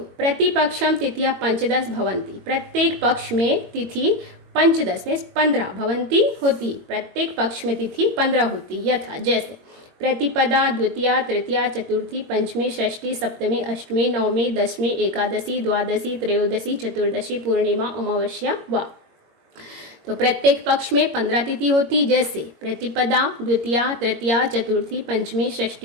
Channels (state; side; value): late; left; 21 ms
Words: प्रतिपक्षम तिथियां 15 भवन्ति। प्रत्येक पक्ष में तिथि 15 में 15 भवन्ति होती। प्रत्येक पक्ष में तिथि 15 होती। यथा जैसे प्रतिपदा द्वितीया तृतीया चतुर्थी पंचमी षष्ठी सप्तमी अष्टमी नवमी दशमी एकादशी द्वादशी त्रयोदशी चतुर्दशी पूर्णिमा अमावस्या वा। तो प्रत्येक पक्ष में 15 तिथि होती। जैसे प्रतिपदा द्वितीया तृतीया चतुर्थी पंचमी